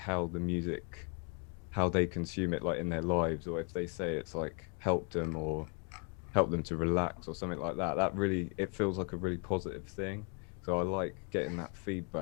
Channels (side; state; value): right; quieter; 37.4 dB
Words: the music, how they consume it like in their lives, or if they say it's like helped them or helped them to relax or something like that. That really, it feels like a really positive thing. So I like getting that